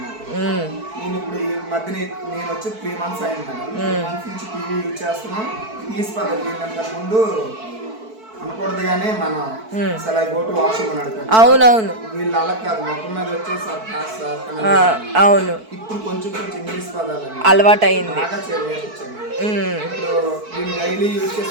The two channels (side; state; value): left; late; 4.5 ms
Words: ఉమ్, నేను ఇప్పుడు ఈ మధ్య నేను వచ్చి 3 months అయింది మేడం. 3 months నుంచి టీవీ యూజ్ చేస్తున్నాం. ఇంగ్లీష్ పదాలు ఏంటంటే ముందు అనకూడదు కానీ మనం అసలు గో టు వాష్రూమ్ అని అడుగుతాం. అవునవును, వీళ్ళు అలా కాదు, మొత్తం మీద వచ్చేసి ఆ, అవును, ఇప్పుడు కొంచెం కొంచెం ఇంగ్లీష్ పదాలు అవి అలవాటు అయింది. బాగా నేర్పించాను. ఇప్పుడు వీళ్ళు డైలీ యూజ్